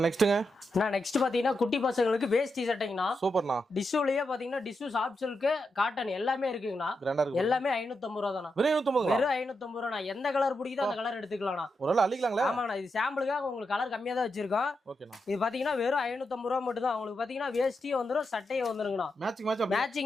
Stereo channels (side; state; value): both; normal; correlation 0.86